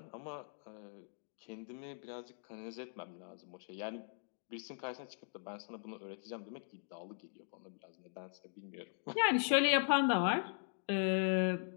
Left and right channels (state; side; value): silent; right; digital silence